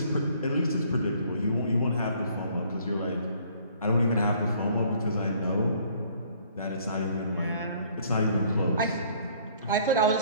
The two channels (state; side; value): inverted; both; correlation -0.59